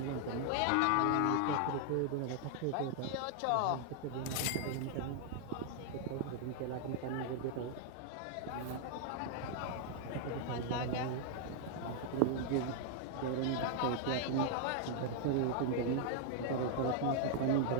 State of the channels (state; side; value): different; both; correlation -0.01